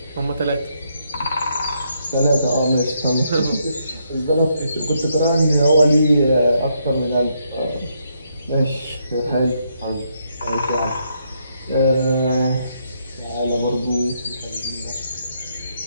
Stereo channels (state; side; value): inverted; both; correlation -0.76